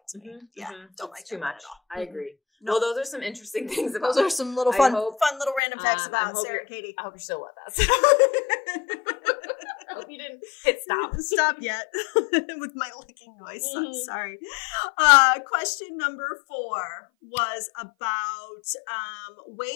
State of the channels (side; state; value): right; drops out; at 5.6 s